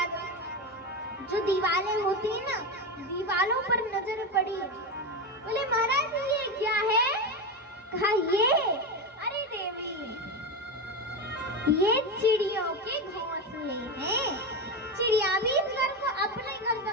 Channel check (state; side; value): normal; both; correlation 0.17